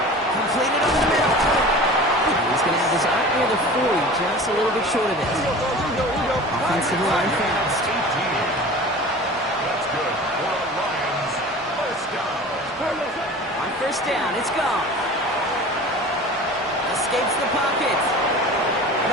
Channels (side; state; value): both; normal; correlation 0.38